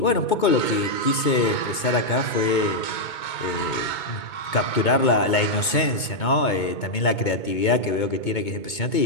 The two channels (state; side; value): late; right; 2.2 ms